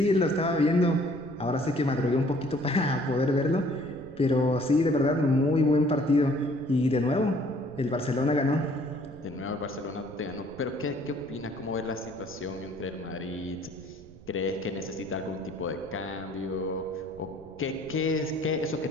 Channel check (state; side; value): noise; right; rumble, 21 dB below the sound